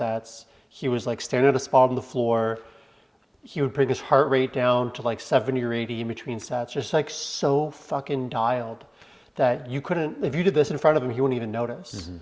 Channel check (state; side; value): identical; both; correlation 1.00